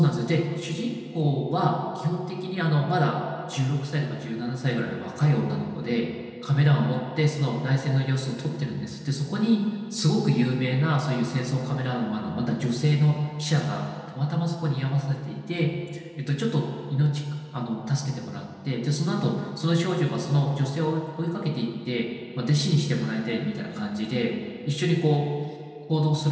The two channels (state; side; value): identical; both; correlation 1.00